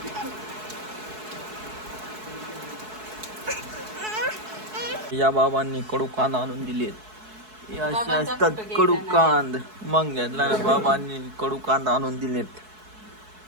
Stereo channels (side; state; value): left; late; 4.7 ms